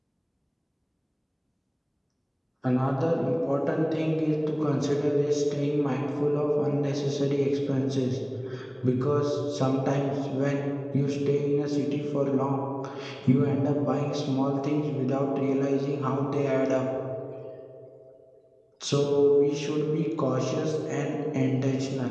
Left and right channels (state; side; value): identical; both; correlation 1.00